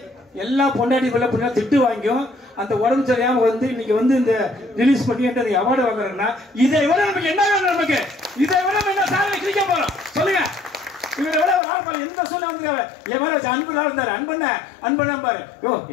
எல்லா பொண்டாட்டி பிள்ளை பிள்ளை திட்டு வாங்கியும் அந்த உடம்பு சரியாம வந்து இன்னைக்கு வந்து இந்த ரிலீஸ் பண்ணி அவார்டு வாங்குறேன்னா இதை விட நமக்கு என்ன வேணும்? நமக்கு இதை விட நம்ம என்ன சாதனை கிழிக்க போறோம் சொல்லுங்க. இவரை விட ஒரு ஆள் எந்த சொல்ல வந்து என் மேல வச்சு அன்பு இருந்தாரு, அன்பண்ண பாரு. யோ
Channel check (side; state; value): right; drops out; at 11.6 s